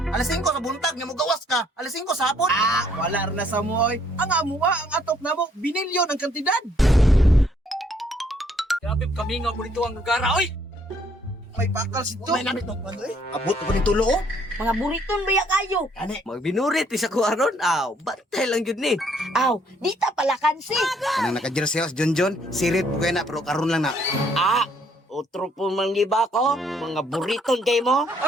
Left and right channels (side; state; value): both; normal; correlation 0.66